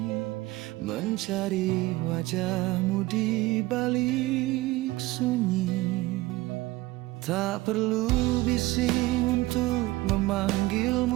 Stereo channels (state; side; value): quieter; left; 19.1 dB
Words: mencari wajahmu di balik sunyi. Tak perlu bising untuk